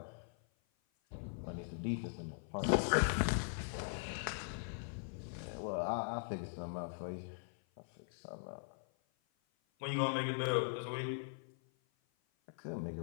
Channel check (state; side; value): silent; right; 51 dB below the other